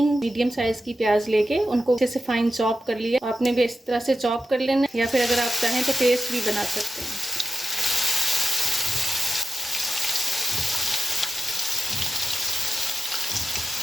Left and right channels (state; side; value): normal; both; correlation 0.92